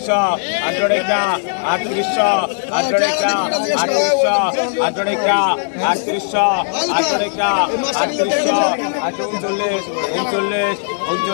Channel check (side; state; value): right; silent; 58 dB below the other